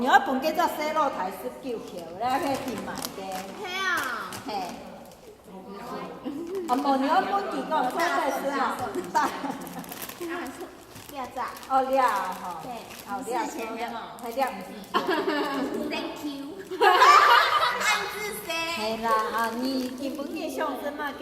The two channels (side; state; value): both; identical; correlation 1.00